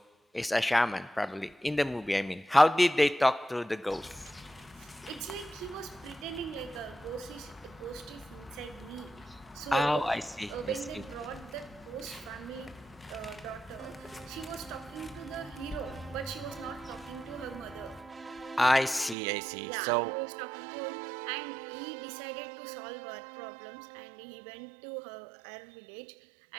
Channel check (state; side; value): drops out; left; at 19.2 s